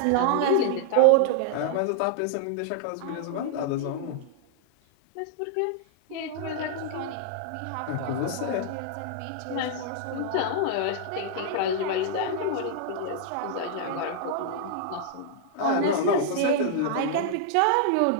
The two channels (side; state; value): both; different; correlation -0.01